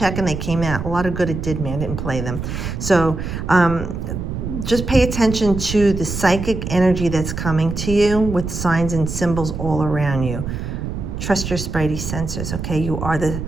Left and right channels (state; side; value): noise; right; rumble, 5 dB below the sound